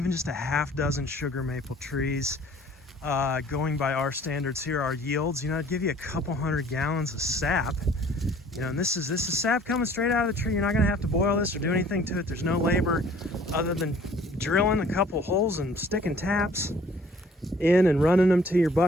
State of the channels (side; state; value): both; normal; correlation 0.54